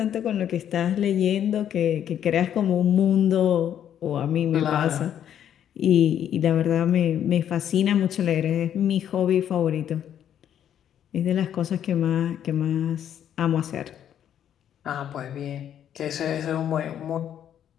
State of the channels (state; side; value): quieter; right; 9.8 dB